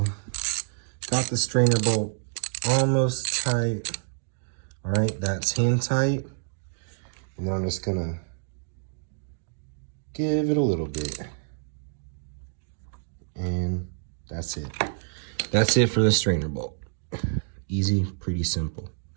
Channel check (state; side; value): silent; left; digital silence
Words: got the strainer bolt almost tight. All right, that's hand tight. And then I'm just gonna give it a little bit. And that's it. That's it for the strainer bolt. Easy, pretty simple.